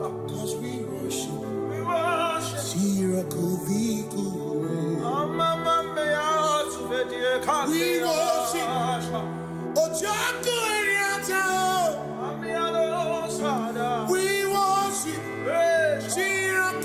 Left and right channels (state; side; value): identical; both; correlation 1.00